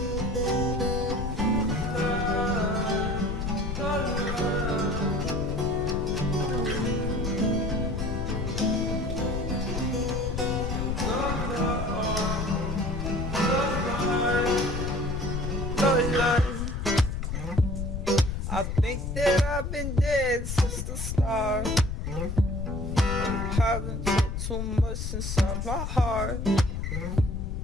I think that I've been dead since the start. Haven't took too much inside my heart,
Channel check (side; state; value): left; noise; rumble, 3 dB below the sound